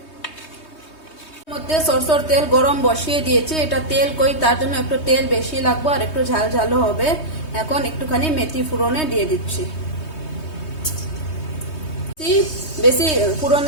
মধ্যে সরষের তেল গরম বসিয়ে দিয়েছি, এটা তেল কই তার জন্য একটু তেল বেশি লাগবে আর একটু ঝাল ঝালও হবে। এখন একটুখানি মেথি ফোড়নে দিয়ে দিচ্ছি, বেশি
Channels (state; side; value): late; right; 3.2 ms